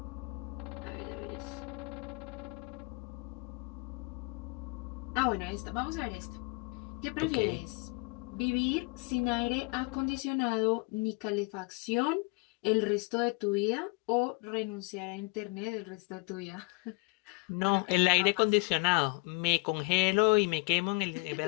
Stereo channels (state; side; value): quieter; right; 31.2 dB